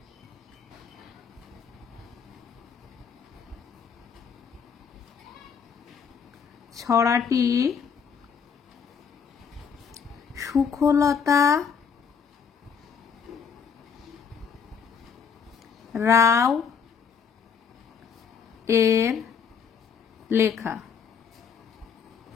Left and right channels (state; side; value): quieter; right; 6.7 dB